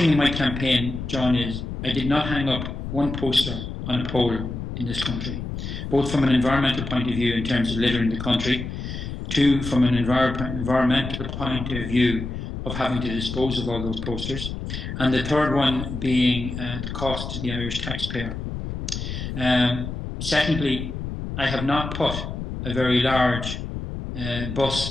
in my campaign, John, is I did not hang up one poster on a pole in this country, both from an environmental point of view in terms of littering the country, two, from an environmental point of view of having to dispose of all those posters, and the third one being the cost to the Irish taxpayer. Secondly, I have not put a very large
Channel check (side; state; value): left; noise; rumble, 6 dB below the sound